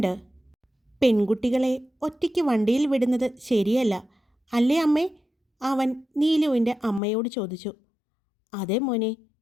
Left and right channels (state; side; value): drops out; right; at 7.0 s